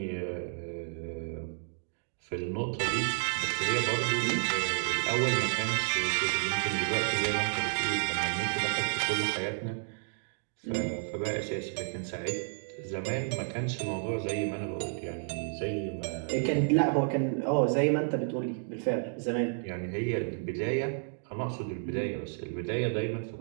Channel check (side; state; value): left; silent; digital silence